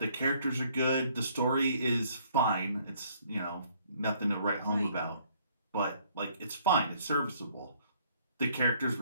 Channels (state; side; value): inverted; both; correlation -0.63